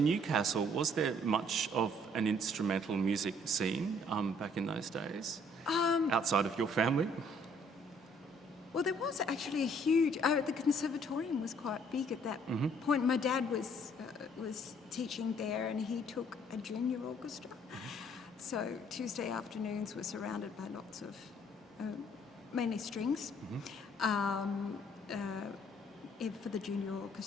Newcastle, was there much of an instrumental music scene back in those days, outside of your family? Well, there was actually a huge... the conservatorium was quite big at that point. My dad was teaching there, and he took a junior orchestra. So Tuesday afternoons were surrounded by lots of, mainly strings, for the junior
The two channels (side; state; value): both; normal; correlation 0.62